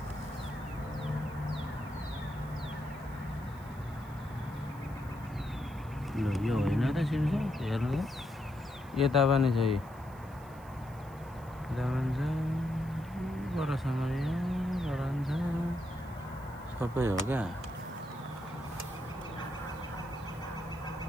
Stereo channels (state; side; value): noise; right; hiss, 25 dB below the sound